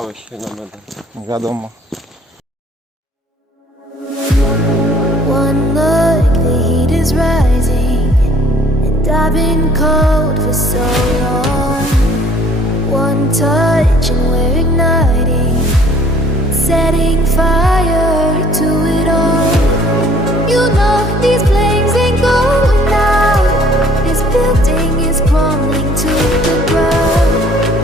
się na medal. Wiadomo. One look, the heat is rising, and I've been cold for so long. One touch and we're igniting, setting fire to it all. You know these flames ain't going out. This building is crumbling to the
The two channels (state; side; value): normal; both; correlation 0.56